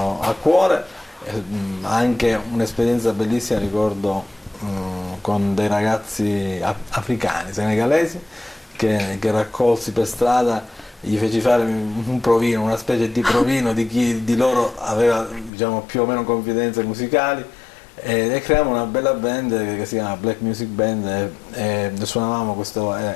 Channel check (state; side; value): drops out; right; at 15.5 s